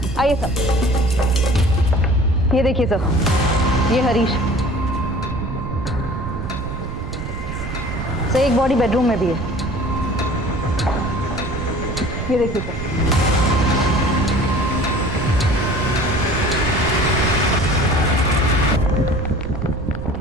आइए सर, ये देखिए सर, ये हरीश। सर एक बॉडी बेडरूम में भी है, ये देखिए सर।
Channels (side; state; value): right; noise; rumble, 7 dB below the sound